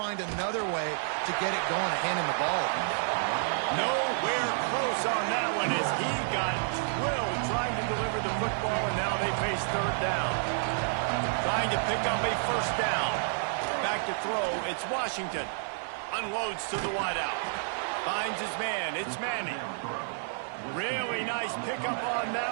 another way to get it going and hand him the ball. Nowhere close on that one as he got drilled trying to deliver the football, and now they face third down. Trying to pick up a first down. Back to throw. It's Washington. Unloads to the wideout. Finds his man. It's Manning. Really nice pickup on that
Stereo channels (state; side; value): silent; left; 58 dB below the other